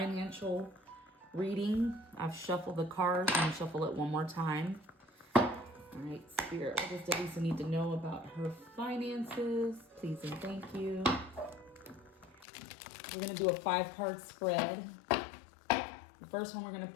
reading. I've shuffled the cards. I'm gonna shuffle it one more time. All right, Spirit. What does Delisa need to know about her finances? Please and thank you. We're gonna do a 5-card spread. The first one we're gonna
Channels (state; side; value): drops out; right; at 12.5 s